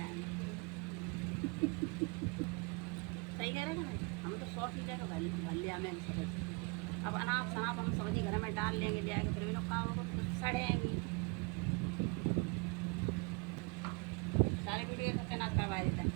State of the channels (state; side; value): quieter; left; 30.1 dB